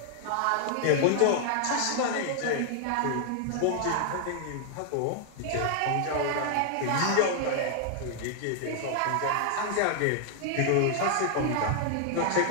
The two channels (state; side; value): different; both; correlation 0.00